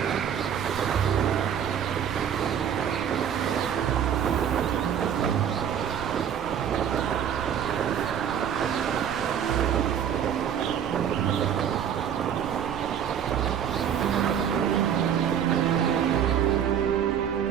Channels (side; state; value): left; quieter; 8.8 dB